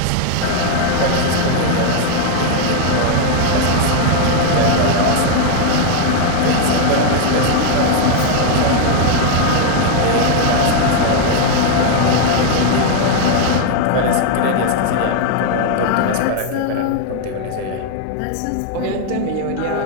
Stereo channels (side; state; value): both; different; correlation 0.01